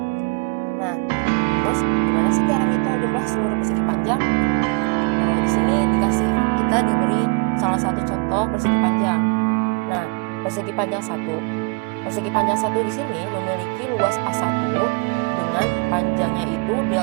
Nah, terus gimana sih cara ngitung jumlah seluruh persegi panjang? Di sini kita diberi salah satu contoh persegi panjang. Nah, persegi panjang 1. Persegi panjang 1 di sini memiliki luas A1 dengan panjangnya itu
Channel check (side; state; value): left; quieter; 32.5 dB